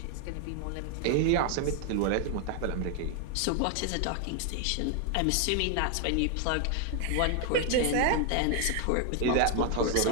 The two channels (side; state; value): both; different; correlation 0.00